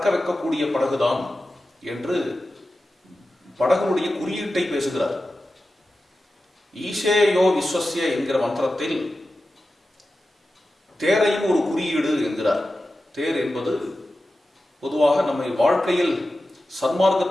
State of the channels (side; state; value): both; normal; correlation 0.93